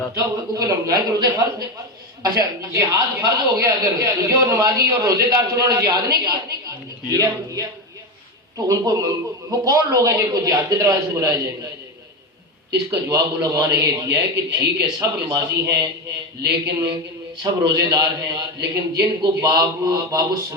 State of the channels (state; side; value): normal; both; correlation 0.16